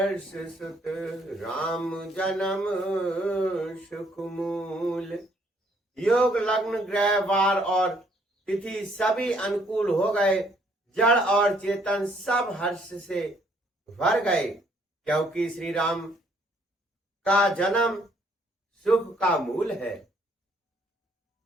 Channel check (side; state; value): both; normal; correlation 0.66